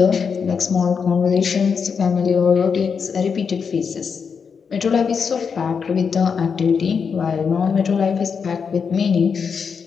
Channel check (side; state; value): right; quieter; 6.1 dB